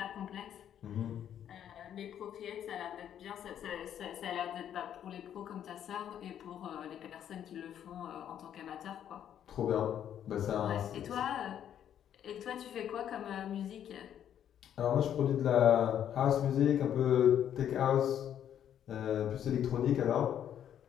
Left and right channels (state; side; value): quieter; right; 9.9 dB